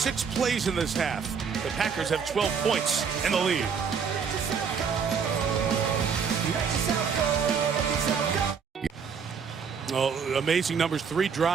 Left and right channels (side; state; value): left; quieter; 6.3 dB